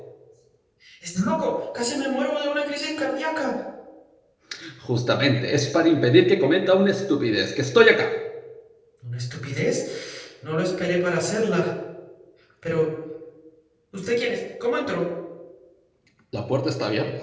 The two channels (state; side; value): identical; both; correlation 1.00